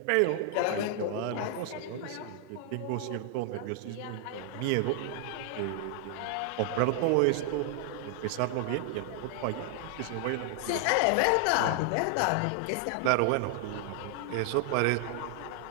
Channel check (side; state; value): both; different; correlation 0.00